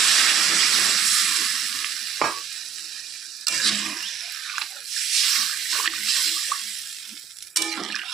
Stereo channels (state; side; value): quieter; left; 7.5 dB